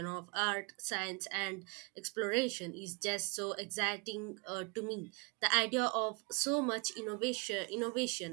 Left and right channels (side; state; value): left; quieter; 31.1 dB